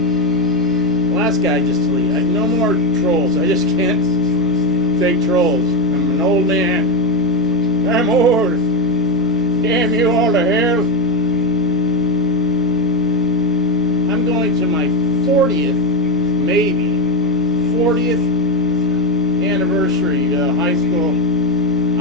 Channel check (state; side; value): noise; right; rumble, 22 dB below the sound